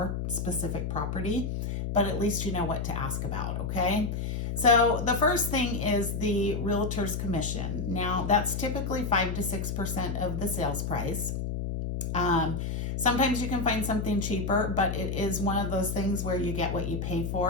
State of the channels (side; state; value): left; noise; hum, 2 dB below the sound